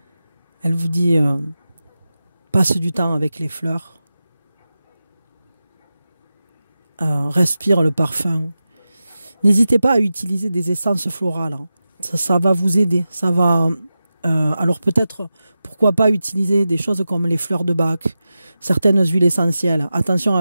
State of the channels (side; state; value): both; inverted; correlation -0.93